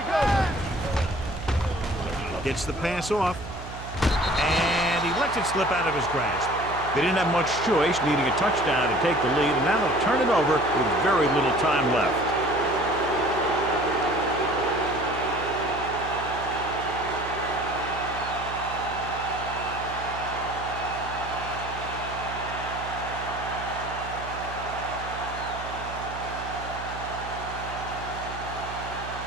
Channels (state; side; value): noise; right; hum, 11 dB below the sound